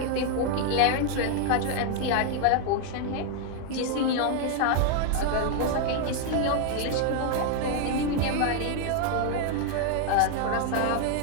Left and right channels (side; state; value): both; different; correlation 0.00